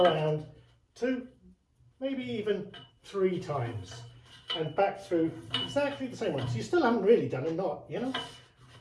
2, maybe even 3 times and back through exactly the same one. So you still haven't really done a knot, you know?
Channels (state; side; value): identical; both; correlation 1.00